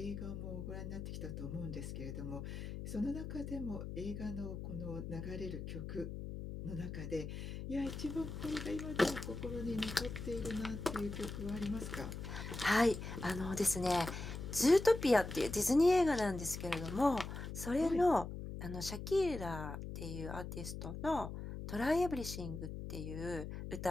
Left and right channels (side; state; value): left; noise; hum, 7 dB below the sound